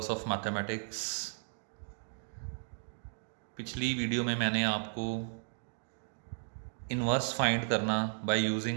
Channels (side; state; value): left; silent; digital silence